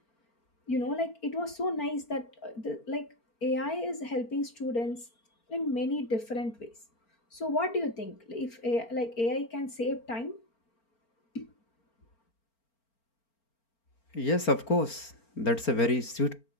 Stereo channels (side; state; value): right; late; 4.4 ms